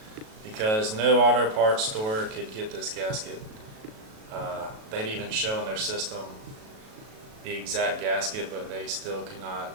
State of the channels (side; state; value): left; late; 37 ms